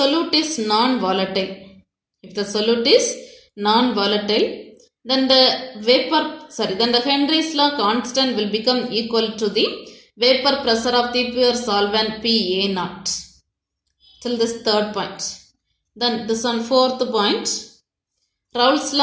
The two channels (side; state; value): both; identical; correlation 1.00